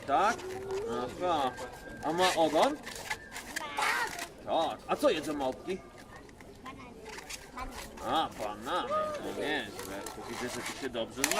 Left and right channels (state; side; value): identical; both; correlation 1.00